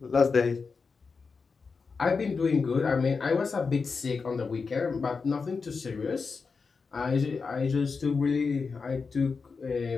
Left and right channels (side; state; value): right; quieter; 4.9 dB